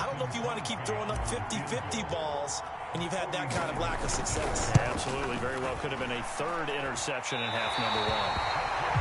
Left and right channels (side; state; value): both; identical; correlation 1.00